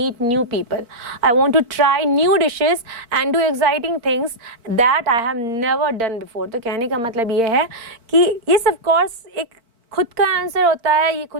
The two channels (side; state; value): left; late; 4.4 ms